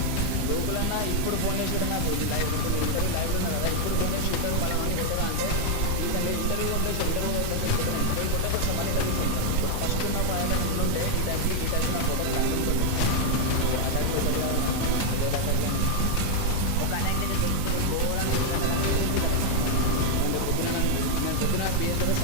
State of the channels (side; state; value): both; different; correlation 0.00